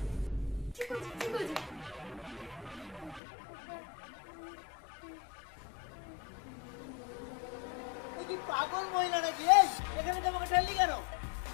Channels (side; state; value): right; drops out; at 3.2 s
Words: ঠিক আছে ঠিক আছে। তুই কি পাগল মহিলা নাকি? এই এখানে তোমাকে ঠেললি কেন?